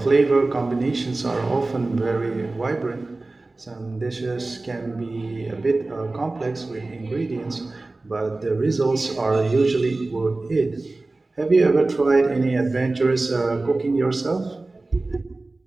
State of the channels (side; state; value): left; quieter; 3.2 dB